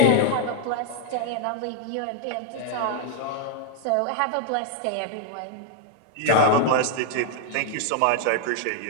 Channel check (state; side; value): different; both; correlation 0.00